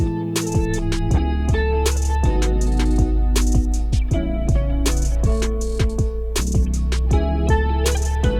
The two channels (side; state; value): both; identical; correlation 1.00